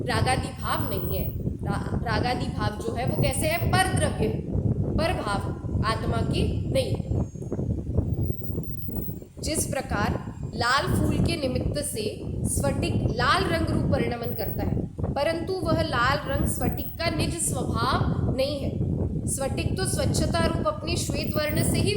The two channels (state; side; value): identical; both; correlation 1.00